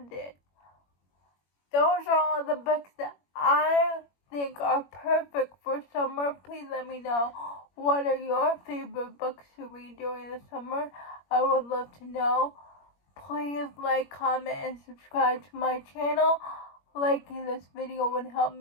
it. Those are all the books that I think are perfect for summer. Please let me know, what are your favorite books to read during the summer? I would love to know. Please like, comment, and subscribe to my channel. Liking this video would help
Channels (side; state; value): right; late; 21 ms